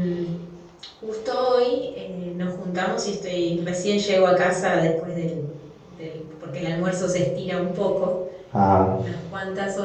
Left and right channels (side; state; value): both; identical; correlation 1.00